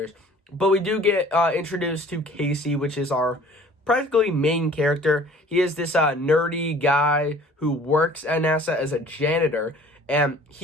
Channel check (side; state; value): both; normal; correlation 0.50